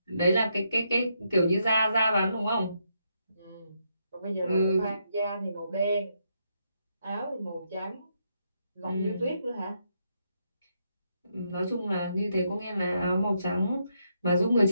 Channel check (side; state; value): both; inverted; correlation -0.79